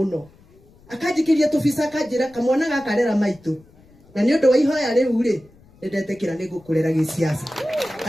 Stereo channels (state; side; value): noise; left; rumble, 28 dB below the sound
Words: akajikiria tufisa akajira kamwana gakarera maitu na ni undu wa ihoya riu ri ndetekira ni gukurera gisiasa.